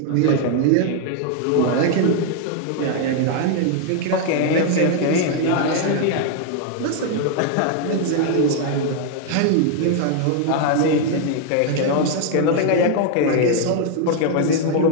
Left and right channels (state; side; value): different; both; correlation 0.00